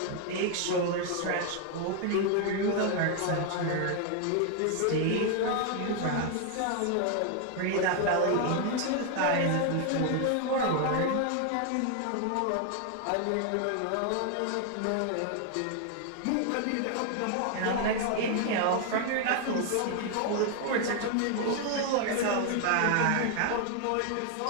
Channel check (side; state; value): both; different; correlation 0.00